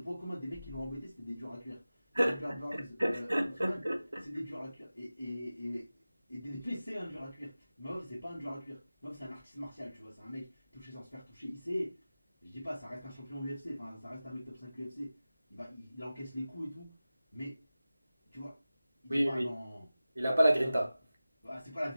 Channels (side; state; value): both; inverted; correlation -0.96